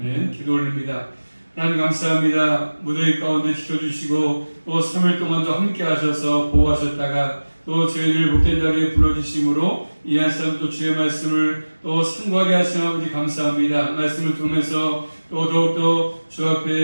기도 올립니다. 하나님 감사합니다. 무더위 가운데 지켜주시고 또 3일 동안도 함께 하셔서 보호하셨다가 또 저희들 복된 자리에 불러주심으로 이 한 사람 또 주의 말씀을 또 상고하게 하신 아버지 감사합니다. 말씀을 통해서 또 더욱더 주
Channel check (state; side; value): inverted; both; correlation -1.00